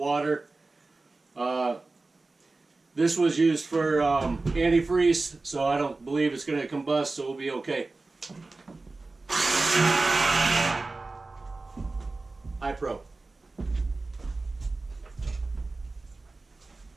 This was used for antifreeze, so I don't believe it's going to combust, so we'll be okay. iPro.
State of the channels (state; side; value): quieter; left; 3.4 dB